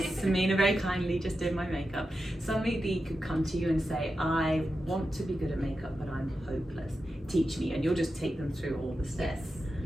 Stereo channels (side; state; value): both; normal; correlation 0.90